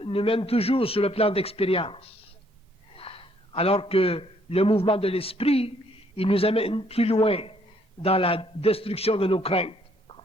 nous mènent toujours sur le plan d'expérience, alors que le mouvement de l'esprit, il nous amène plus loin dans la destruction de nos craintes.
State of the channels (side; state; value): both; normal; correlation 0.66